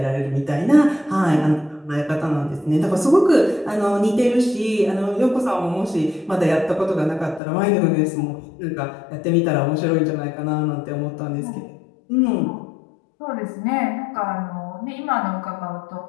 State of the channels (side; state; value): right; drops out; at 7.4 s